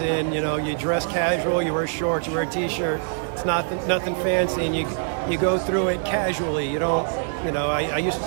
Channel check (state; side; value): silent; left; digital silence